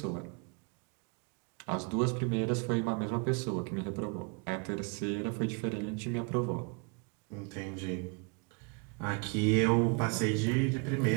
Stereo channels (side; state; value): left; quieter; 33.1 dB